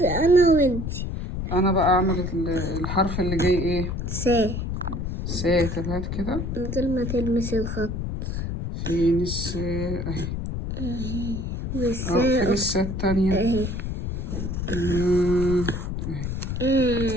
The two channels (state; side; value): noise; left; rumble, 3 dB below the sound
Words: انا وانتي. انا بقى اعمل الحرف اللي جاي ايه؟ سا. طب هات كده. من غير ما تلمس الخط. فين السا؟ اهي. فين السا التانية؟ اهي. اهي.